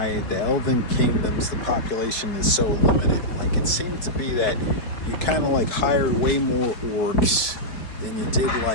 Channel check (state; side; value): late; right; 4.8 ms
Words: the Elven Kingdoms, the population is so limited. Like, it seemed to be that you kind of like hired way more orcs than you did